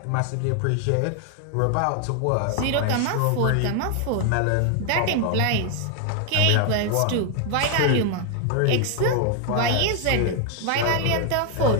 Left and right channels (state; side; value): different; both; correlation 0.00